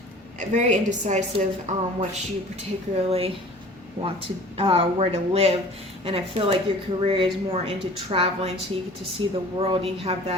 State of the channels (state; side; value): normal; both; correlation 0.45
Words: Very indecisive on what you particularly want to, where to live. And I feel like your career is more into traveling, so you get to see the world. You have